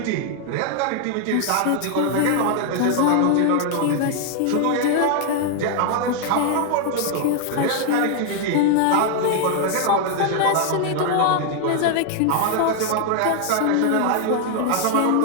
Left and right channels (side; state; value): both; different; correlation 0.00